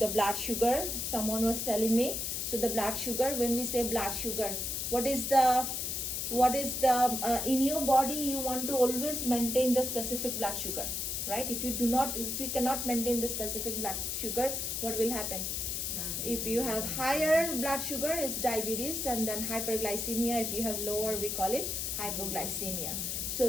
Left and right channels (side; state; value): left; noise; hiss, 2 dB below the sound